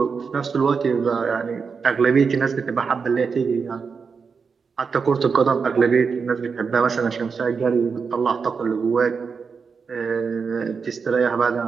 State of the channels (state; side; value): quieter; left; 5.5 dB